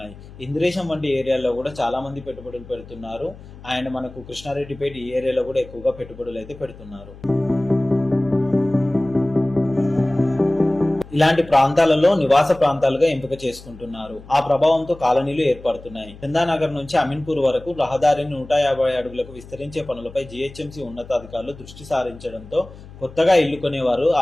ఇంద్రేశం వంటి ఏరియాలో కూడా చాలా మంది పెట్టుబడులు పెడుతున్నారు. అండ్ మనకు కృష్ణారెడ్డిపేట ఈ ఏరియాలో కూడా ఎక్కువగా పెట్టుబడులు అయితే పెడుతున్నారు. ఇలాంటి ప్రాంతాలలో నివాస ప్రాంతాలుగా ఎంపిక చేసుకుంటున్నారు. ఆ ప్రభావంతో కాలనీలు ఏర్పడుతున్నాయి. చందానగర్ నుంచి అమీన్పూర్ వరకు రహదారిని 150 అడుగులకు విస్తరించే పనులపై జీహెచ్ఎంసీ ఉన్నతాధికారులు దృష్టి సారించడంతో కొత్తగా ఇల్లు కొనేవారు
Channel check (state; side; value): noise; left; hum, 18 dB below the sound